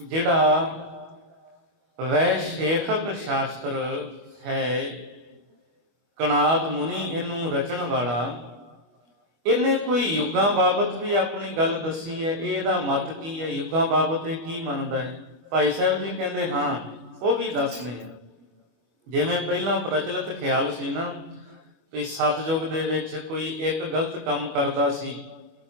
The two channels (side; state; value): left; late; 25 ms